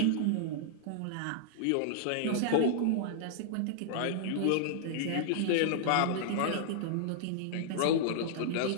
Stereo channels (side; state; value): both; different; correlation -0.01